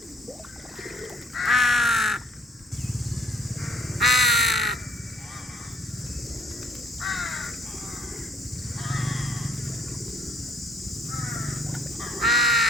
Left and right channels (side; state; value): both; normal; correlation 0.61